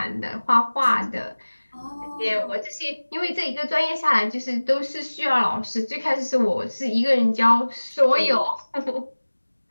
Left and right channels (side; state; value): both; inverted; correlation -1.00